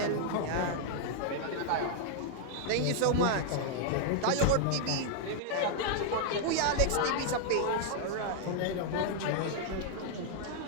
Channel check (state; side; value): different; both; correlation -0.01